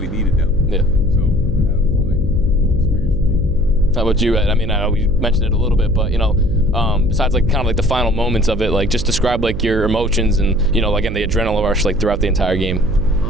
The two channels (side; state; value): right; noise; hum, 6 dB below the sound